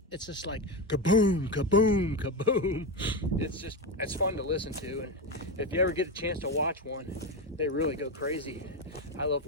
just like kaboom, kaboom, kaboom. It's fun to listen to. And if you ever get a chance to watch one, they really go crazy. I love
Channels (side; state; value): both; normal; correlation 0.14